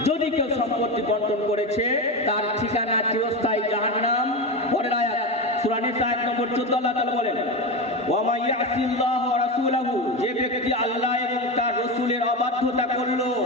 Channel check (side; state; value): both; normal; correlation 0.18